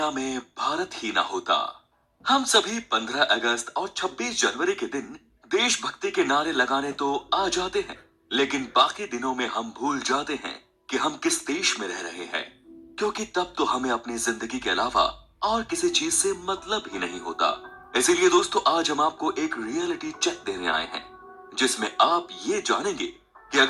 में भारत ही ना होता? हम सभी 15 अगस्त और 26 जनवरी के दिन देशभक्ति के नारे लगाने तो आ जाते हैं, लेकिन बाकी दिनों में हम भूल जाते हैं कि हम किस देश में रह रहे हैं, क्योंकि तब तो हमें अपनी जिंदगी के अलावा और किसी चीज से मतलब ही नहीं होता। इसीलिए दोस्तों, आज हम आपको एक रियलिटी चेक देने आए हैं, जिसमें आप ये जानेंगे कि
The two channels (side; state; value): both; identical; correlation 1.00